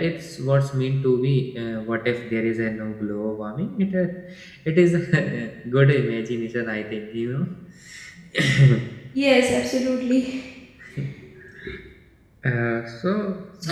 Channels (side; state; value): both; identical; correlation 1.00